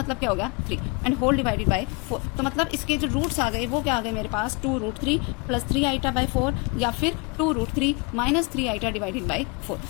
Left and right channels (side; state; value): right; quieter; 30.1 dB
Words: क्या हो गया 3 एंड होल डिवाइडेड बाय 4। तो मतलब इसके जो रूट्स आ गए वो क्या आ गए मेरे पास 2√3 प्लस 3 आइटा बाय 4 या फिर 2√3 माइनस 3 आइटा डिवाइडेड बाय 4।